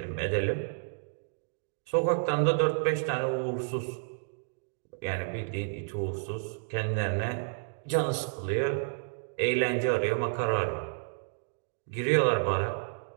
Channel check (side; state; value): left; silent; digital silence